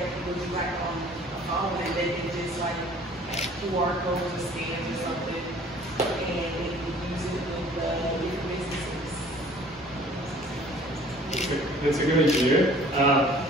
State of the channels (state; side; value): normal; both; correlation 0.52